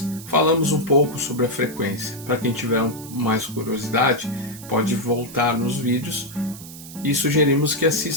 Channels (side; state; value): right; noise; hiss, 15 dB below the sound